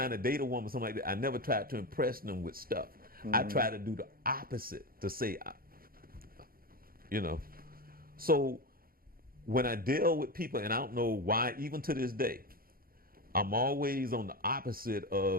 to date a woman, something like that, I never tried to impress them with stuff. I tried to do the opposite, to say, you know. So when I deal with people, and I don't know why, even to this day, I'm always on the opposite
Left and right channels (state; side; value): late; left; 0.42 ms